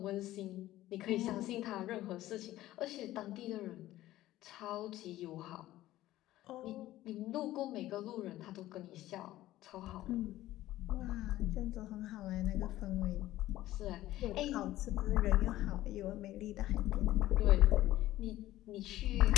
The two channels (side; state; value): right; quieter; 15.2 dB